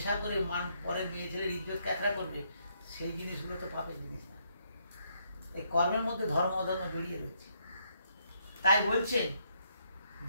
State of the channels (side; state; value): both; inverted; correlation -0.74